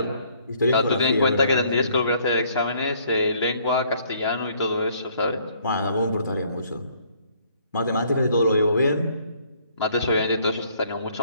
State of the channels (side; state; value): both; inverted; correlation -0.63